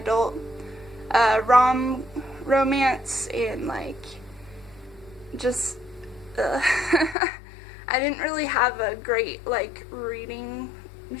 romance and like just I didn't really have a great like reading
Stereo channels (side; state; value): right; drops out; at 7.2 s